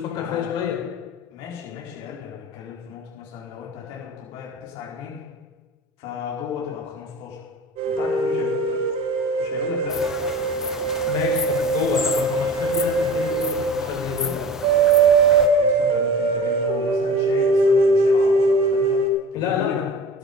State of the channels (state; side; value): normal; both; correlation 0.37